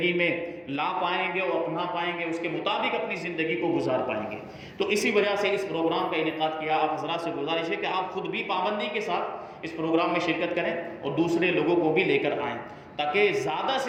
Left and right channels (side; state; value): both; identical; correlation 1.00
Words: میں لا پائیں گے اور اپنا پائیں گے، اس کے مطابق اپنی زندگی کو گزار پائیں گے. تو اسی وجہ سے اس پروگرام کا انعقاد کیا. آپ حضرات سے گزارش ہے کہ آپ خود بھی پابندی کے ساتھ اس پروگرام میں شرکت کریں اور دوسرے لوگوں کو بھی لے کر آئیں، تاکہ زیادہ